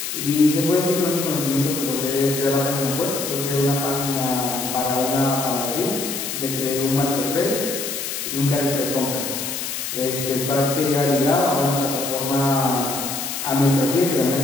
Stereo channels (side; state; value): left; noise; hiss, 4 dB below the sound